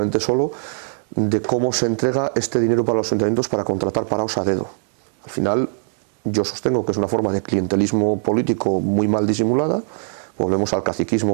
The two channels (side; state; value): left; silent; digital silence